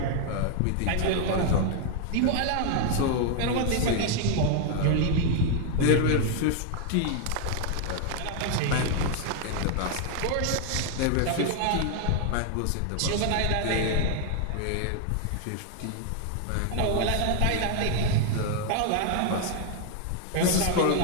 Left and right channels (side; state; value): both; different; correlation 0.00